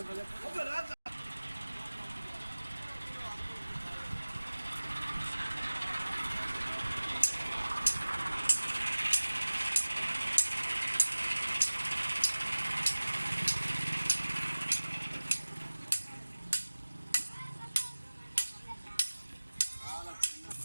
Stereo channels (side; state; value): both; inverted; correlation -1.00